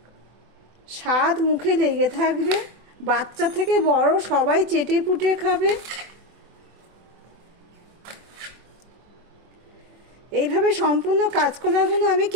স্বাদ মুখে লেগে থাকবে। বাচ্চা থেকে বড় সবাই চেটে পুটে খাবে। এইভাবে সম্পূর্ণ কাঁচকলাগুলো আমি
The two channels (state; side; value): late; left; 24 ms